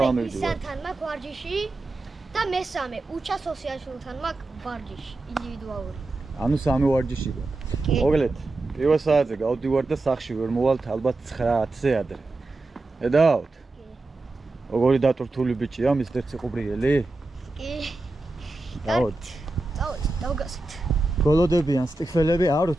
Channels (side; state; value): left; quieter; 3.1 dB